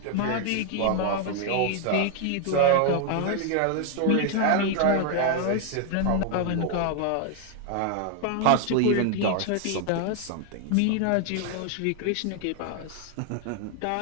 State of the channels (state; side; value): different; both; correlation 0.01